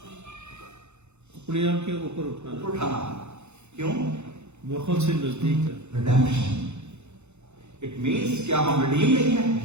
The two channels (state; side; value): late; left; 0.82 ms